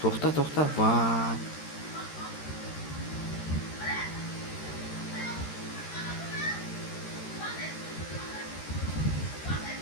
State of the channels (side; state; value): right; late; 13 ms